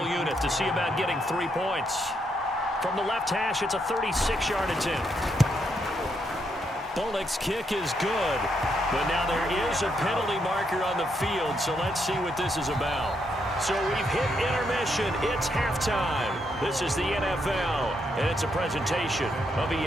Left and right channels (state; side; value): normal; both; correlation 0.78